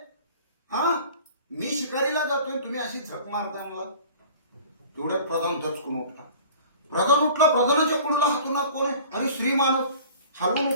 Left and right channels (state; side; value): inverted; both; correlation -0.45